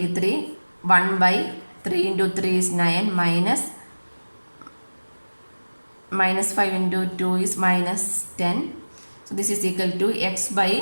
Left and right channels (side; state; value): both; inverted; correlation -1.00